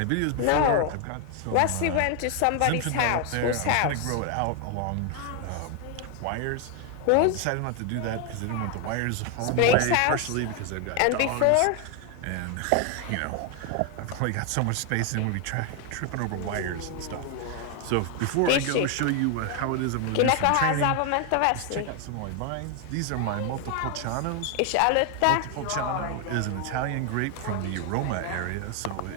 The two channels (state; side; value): different; both; correlation 0.00